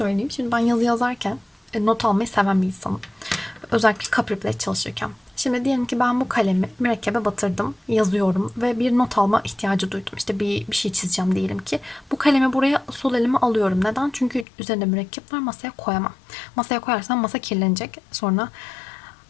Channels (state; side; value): drops out; right; at 14.5 s